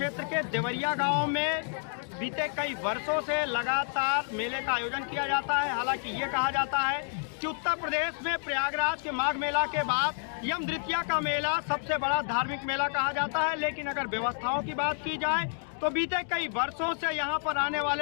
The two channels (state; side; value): silent; right; 58 dB below the other